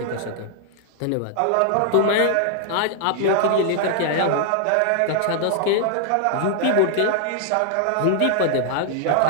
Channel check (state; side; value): different; both; correlation 0.00